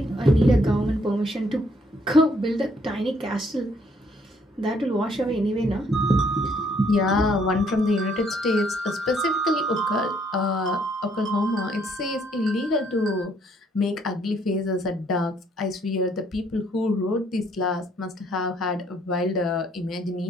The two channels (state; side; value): normal; both; correlation 0.67